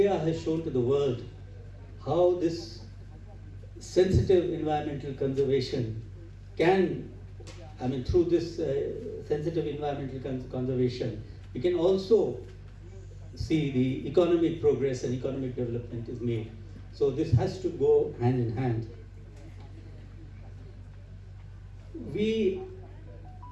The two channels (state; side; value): identical; both; correlation 1.00